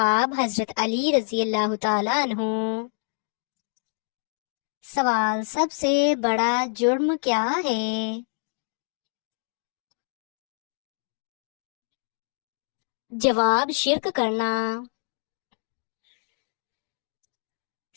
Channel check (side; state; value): right; silent; digital silence